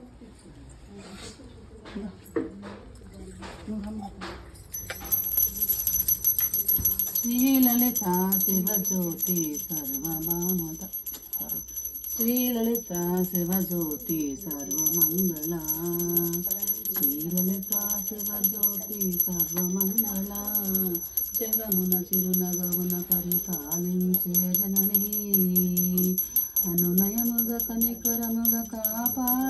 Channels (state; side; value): identical; both; correlation 1.00